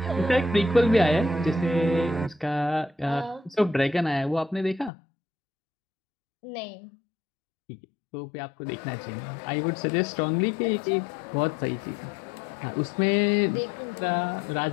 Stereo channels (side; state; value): right; drops out; at 4.9 s